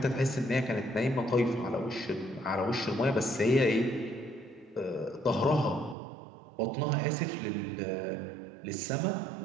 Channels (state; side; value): drops out; left; at 6.0 s